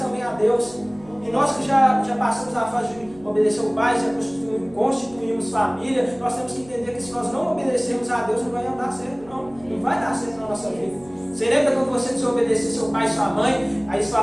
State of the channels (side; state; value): right; noise; hum, 23 dB below the sound